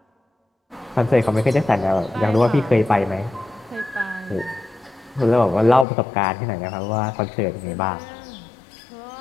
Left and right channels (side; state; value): right; drops out; at 5.9 s